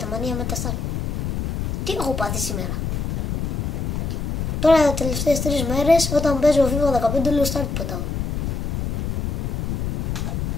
μανία με τα στάρ. Τι έχω πάθει σήμερα. Τώρα τα τελευταίες 3 μέρες όταν παίζω FIFA 15 λέω start πετάω.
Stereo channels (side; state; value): left; noise; rumble, 1 dB below the sound